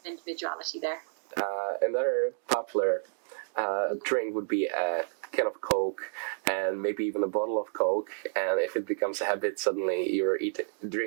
individuality there. Another popular drink would be a can of Coke, and maybe even a bottle of Coke, and if it becomes a habit, suddenly you're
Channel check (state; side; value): silent; left; digital silence